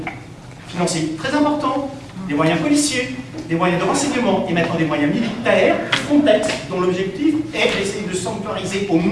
financiers très importants, des moyens policiers, des moyens de renseignement et maintenant des moyens militaires, Frontex, dont l'objectif est d'essayer de sanctuariser au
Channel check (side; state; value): both; identical; correlation 1.00